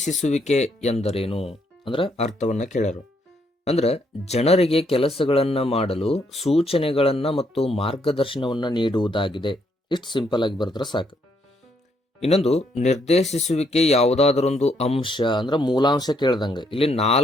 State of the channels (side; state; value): both; normal; correlation 0.73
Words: ಎಂದರೇನು ಅಂದ್ರೆ ಅರ್ಥವನ್ನ ಕೇಳರು. ಅಂದ್ರೆ ಜನರಿಗೆ ಕೆಲಸಗಳನ್ನ ಮಾಡಲು ಸೂಚನೆಗಳನ್ನ ಮತ್ತು ಮಾರ್ಗದರ್ಶನವನ್ನ ನೀಡುವುದಾಗಿದೆ. ಇಷ್ಟು ಸಿಂಪಲ್ ಆಗಿ ಬರೆದ್ರೆ ಸಾಕು. ಇನ್ನೊಂದು, ನಿರ್ದೇಶಿಸುವಿಕೆ ಯಾವುದಾದರೊಂದು ಅಂಶ ಅಂದ್ರೆ ಮೂಲಾಂಶ ಕೇಳ್ದಂಗೆ ಇಲ್ಲಿ